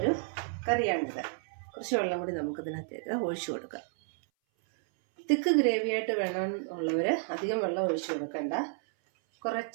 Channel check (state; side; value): silent; left; 57 dB below the other